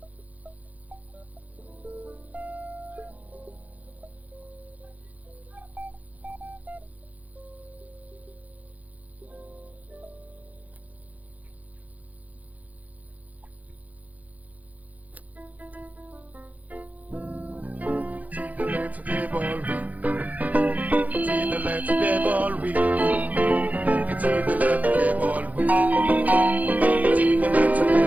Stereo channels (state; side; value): late; left; 0.076 ms